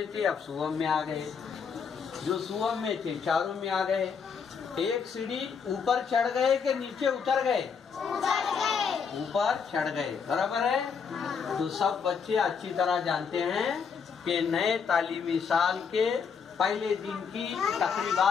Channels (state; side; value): quieter; right; 6.2 dB